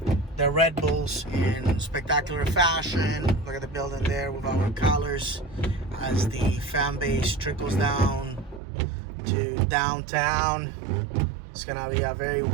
Red Bulls in spectacular fashion. Look at the building there with our colors. as the fan base trickles down to downtown. It's gonna be a very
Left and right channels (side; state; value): left; drops out; at 8.6 s